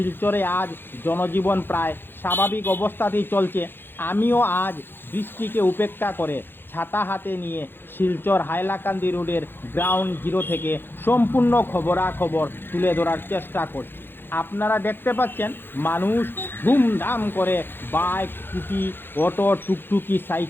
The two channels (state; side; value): late; right; 0.10 ms